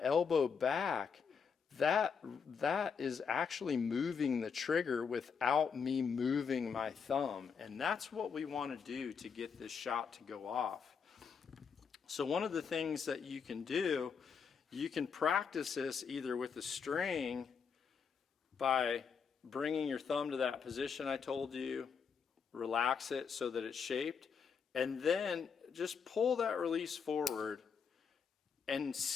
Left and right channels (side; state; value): right; quieter; 6.2 dB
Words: back, that is actually moving the trigger without me moving my thumb. And that's what we want to do to get this shot to go off. So one of the things that you can do, you can practice this either with a string by bringing your thumb to that position I told you, relax it so that it's shaped, and then just pull that release forward and